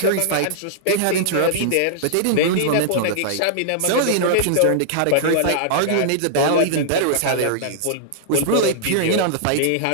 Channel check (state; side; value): different; both; correlation -0.02